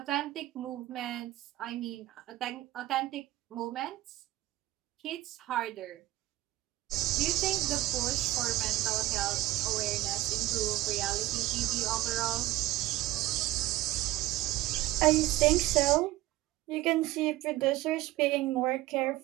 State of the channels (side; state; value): left; quieter; 16.8 dB